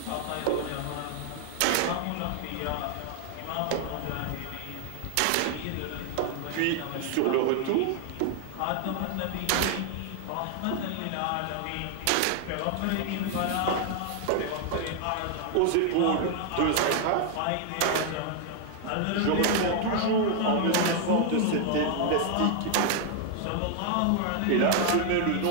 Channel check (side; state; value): both; different; correlation 0.00